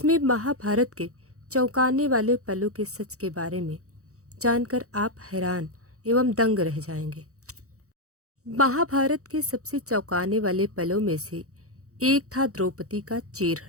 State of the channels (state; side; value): late; left; 0.65 ms